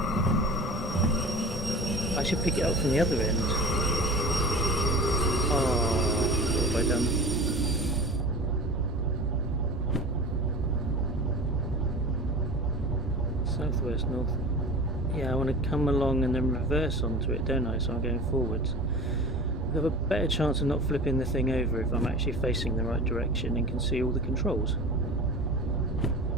I should pick it up from the other end. Oh, what have I done? Southwest, north. Yeah, I want to come along and then reverse onto it, don't I? So I'm going forwards. I have a better chance of not flipping the thing over if I'm actually facing the right direction and can see all the controls.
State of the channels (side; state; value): both; normal; correlation 0.35